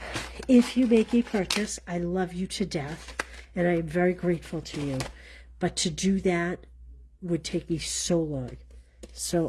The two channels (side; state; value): both; identical; correlation 1.00